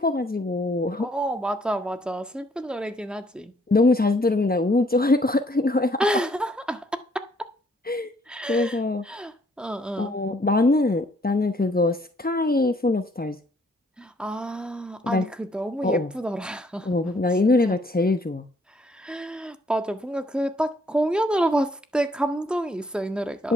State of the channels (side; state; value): both; normal; correlation 0.65